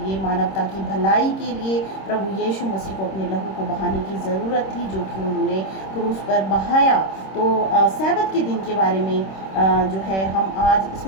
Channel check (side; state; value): right; late; 26 ms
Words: मानवता की भलाई के लिए प्रभु यीशु मसीह को अपने लहू को बहाने की ज़रूरत थी, जो कि उन्होंने क्रूस पर बहाया। तो सैबत के दिन के बारे में जो है हम आज